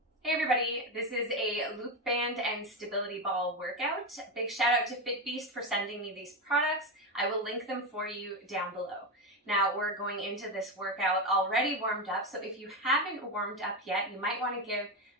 Hey everybody, this is a loop band and stability ball workout. Big shout out to FitBeast for sending me these products. I will link them for you down below. Now we're going into this workout already warmed up, so if you haven't warmed up yet, you might want to give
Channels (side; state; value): both; normal; correlation 0.14